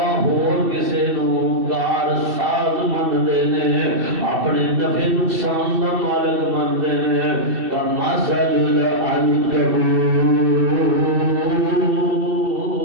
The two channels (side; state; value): left; late; 2.7 ms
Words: ہور کسے نو کار ساز مننے نے، اپنے نفع نقصان دا مالک منتے ہیں۔ کمثل العنکبوت،